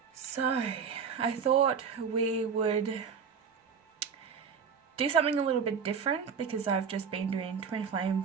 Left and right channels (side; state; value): left; quieter; 6.4 dB